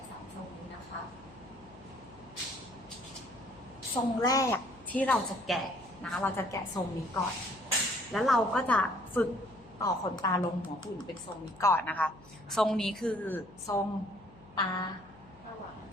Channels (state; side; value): noise; left; hum, 23 dB below the sound